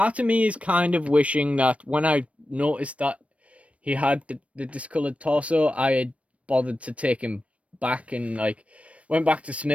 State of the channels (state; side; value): late; left; 0.064 ms